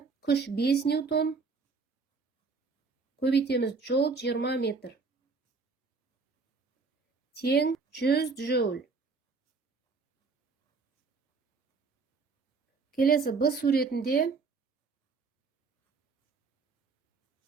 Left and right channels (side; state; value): left; quieter; 4.5 dB